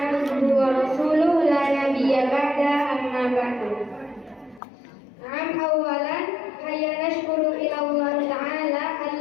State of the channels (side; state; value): right; drops out; at 4.6 s